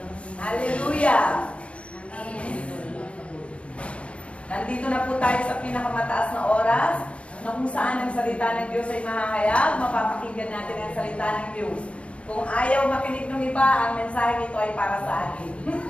Hallelujah. Nandito na po tayo sa pinakamataas na oras na kung saan ang salita ng Diyos ay mahahayag, mapapakinggan natin ang salita ng Diyos. Kung ayaw makinig ng iba, ang mensahe ito ay para sa akin.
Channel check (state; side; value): late; right; 0.061 ms